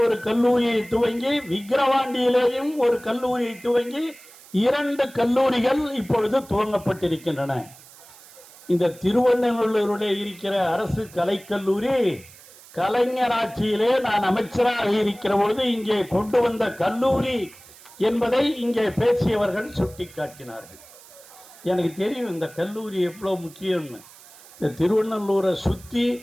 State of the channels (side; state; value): right; noise; hiss, 22 dB below the sound